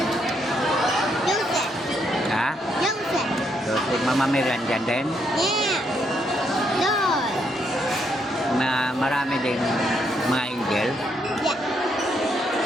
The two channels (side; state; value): both; normal; correlation 0.75